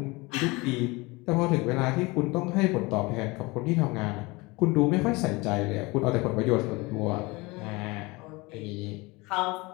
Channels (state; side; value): quieter; right; 24.1 dB